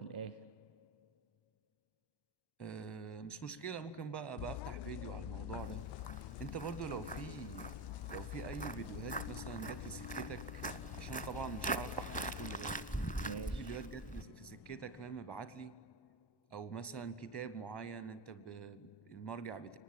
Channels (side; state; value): right; late; 1.1 ms